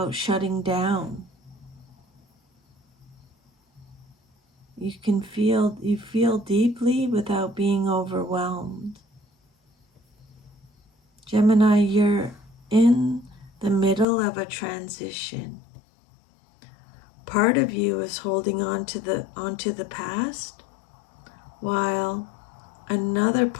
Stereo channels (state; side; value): drops out; right; at 14.1 s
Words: shutting down. You feel deeply without being overwhelmed. Gemini, you're in the middle of a transition. Part of you is holding onto the past, while another